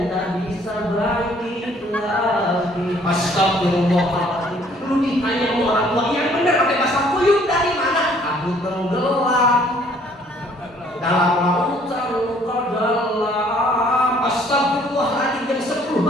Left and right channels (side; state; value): both; normal; correlation 0.60